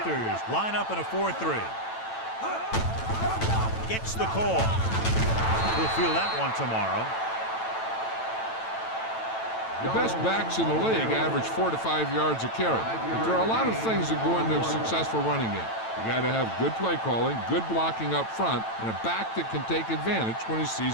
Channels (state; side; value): late; right; 9.0 ms